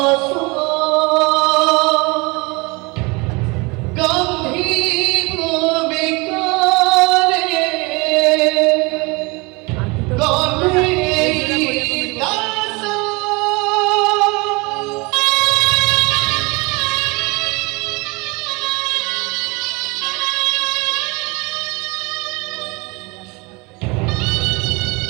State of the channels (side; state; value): left; quieter; 26.8 dB